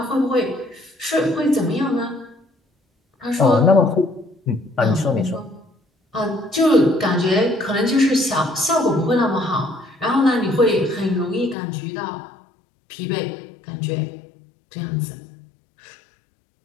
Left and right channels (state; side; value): drops out; right; at 11.6 s